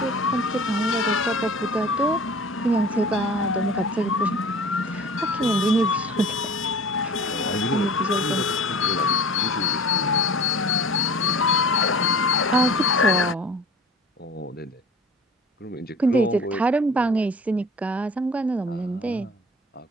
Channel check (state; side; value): normal; both; correlation 0.43